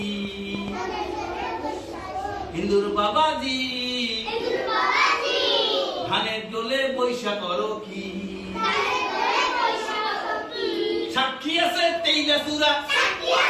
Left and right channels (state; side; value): identical; both; correlation 1.00